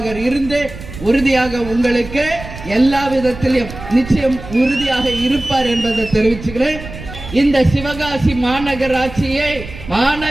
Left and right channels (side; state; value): right; noise; rumble, 13 dB below the sound